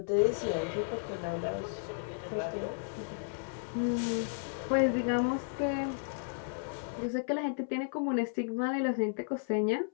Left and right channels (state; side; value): silent; right; 55 dB below the other